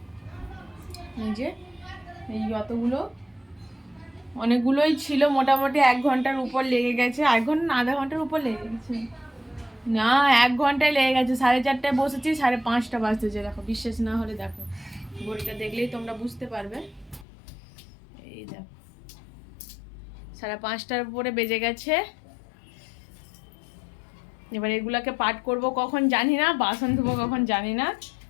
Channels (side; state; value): right; drops out; at 17.2 s